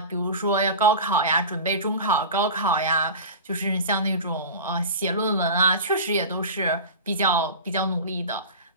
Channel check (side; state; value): both; inverted; correlation -0.30